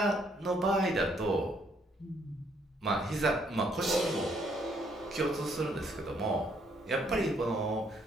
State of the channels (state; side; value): normal; both; correlation 0.69